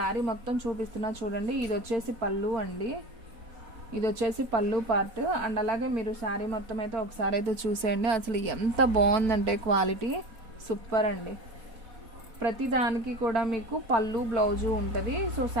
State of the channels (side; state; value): left; late; 4.5 ms